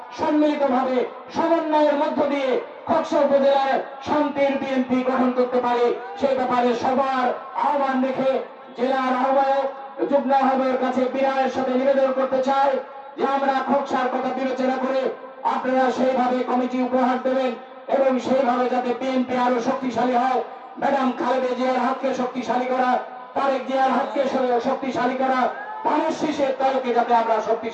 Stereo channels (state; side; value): identical; both; correlation 1.00